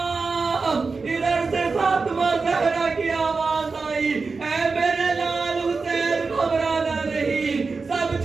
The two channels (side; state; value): left; quieter; 4.3 dB